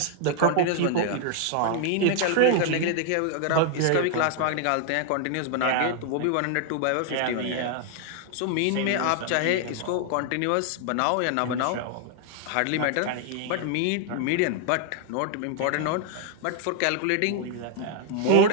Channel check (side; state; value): both; different; correlation 0.00